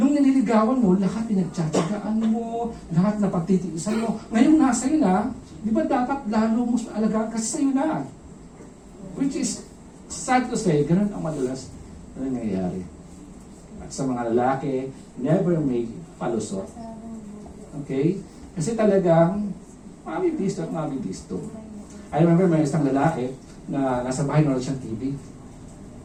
nililigawan mo, lahat pinagtsatsagaan mo, lahat na pagtitiisan mo. Ngayon nasa iyo na, di ba dapat lalo mo alagaan kasi sa'yo na. Which is, sad to say, gano'n ang madalas na nangyayari. At sa mga lalaki, never make palusot. Okay? Kasi talagang, mabibisto at mabibisto. I remember may isang lalaki na nasa bahay nanonood siyang TV.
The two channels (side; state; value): both; identical; correlation 1.00